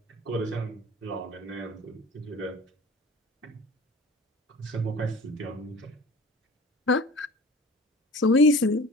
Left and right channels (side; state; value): both; normal; correlation 0.42